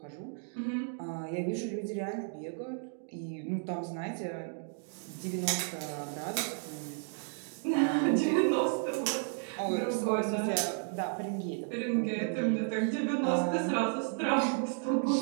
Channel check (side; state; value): left; silent; 56 dB below the other